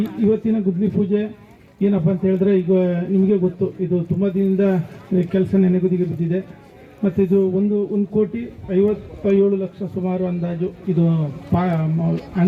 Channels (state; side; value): identical; both; correlation 1.00